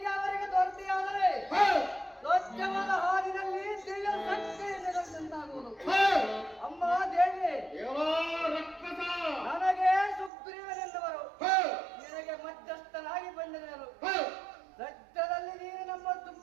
ಅವರಿಗೆ ದೊರೆತಿಯಾದರೆ ಹೇ, ಸ್ವಚ್ಛವಾದ ಹಾಲಿನಲ್ಲಿ ದಿವ್ಯ ಶಕ್ತಿ ನಿರಂತಾಗುವುದು. ಹೇ, ಅಮ್ಮ ದೇವಿ, ಎಲ್ಲಾ ರಕ್ಕಸ ನನಗೆ ಸುಗ್ರೀವನೆಂದವರು ಹೇ, ನಿನಗೆ ಮಧ್ಯಸ್ಥನಾಗಿ ಬಂದಿರುವರು. ಹೇ, ಸದ್ಯದಲ್ಲಿ ನೀನು ನಮ್ಮ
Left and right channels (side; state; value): left; drops out; at 10.3 s